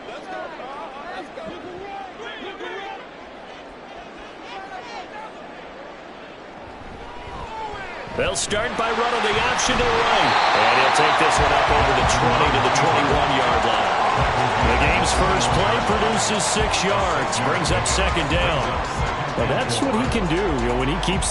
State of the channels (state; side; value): identical; both; correlation 1.00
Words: They'll start by running the option to the right. And he'll take this one up over the 20 to the 21-yard line. The game's first play produces 6 yards, brings up second down. Well, that's what he can do, when he keeps